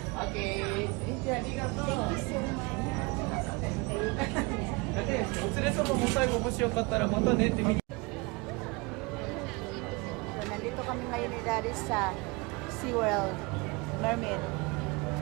Okay. Thank you. ありがとう。だってお連れ様も最後もしよかったらまたねって。So, nandito kami ngayon ni Daddy sa SeaWorld Mermaid.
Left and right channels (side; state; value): left; quieter; 26.4 dB